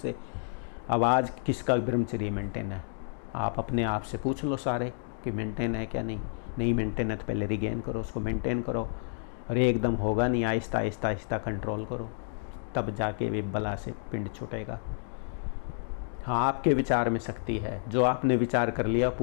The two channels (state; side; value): silent; right; digital silence